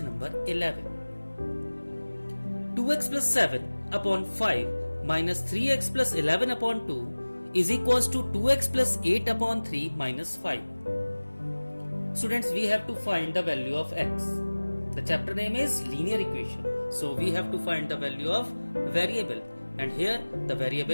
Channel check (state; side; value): inverted; both; correlation -1.00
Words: number 11. 2x plus 7 upon 5 minus 3x plus 11 upon 2 is equals to 2x plus 8 upon 3 minus 5. Students, we have to find the value of x. The chapter name is linear equation. So we have to find the value of variable, and here the